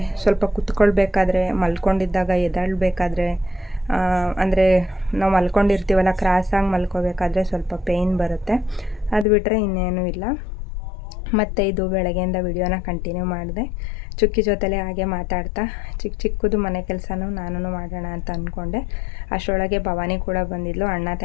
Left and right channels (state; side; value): drops out; right; at 9.2 s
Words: ಸ್ವಲ್ಪ ಕುತ್ಕೊಳ್ಬೇಕಾದ್ರೆ, ಮಲ್ಕೊಂಡಿದ್ದಾಗ ಎದ್ದೇಳಬೇಕಾದ್ರೆ, ಅಂದರೆ ನಾವು ಮಲ್ಕೊಂಡಿರ್ತೀವಲ್ಲ, ಕ್ರಾಸಾಗಿ ಮಲ್ಕೋಬೇಕಾದ್ರೆ ಸ್ವಲ್ಪ ಪೇಯ್ನ್ ಬರುತ್ತೆ. ಅದು ಬಿಟ್ಟರೆ ಇನ್ನೇನೂ ಇಲ್ಲ. ಮತ್ತು ಇದು ಬೆಳಗ್ಗೆಯಿಂದ ವಿಡಿಯೋನ ಕಂಟಿನ್ಯೂ ಮಾಡಿದೆ. ಚುಕ್ಕಿ ಜೊತೆಲೇ ಹಾಗೆ ಮಾತಾಡ್ತಾ ಚಿಕ್ಕದು ಮನೆ ಕೆಲಸನೂ ನಾನು ಮಾಡೋಣ ಅಂತ ಅಂದ್ಕೊಂಡೆ. ಅಷ್ಟರೊಳಗೆ ಭವಾನಿ ಕೂಡ ಬಂದಿದ್ಲು. ಅಣ್ಣ